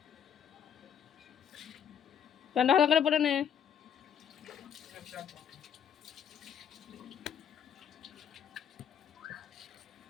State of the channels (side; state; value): right; quieter; 8.3 dB